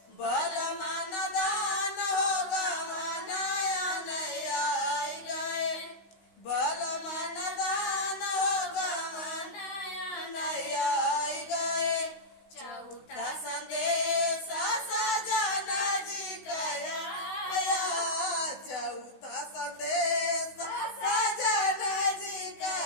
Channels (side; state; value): right; late; 16 ms